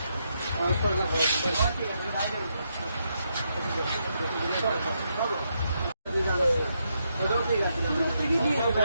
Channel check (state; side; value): inverted; both; correlation -0.80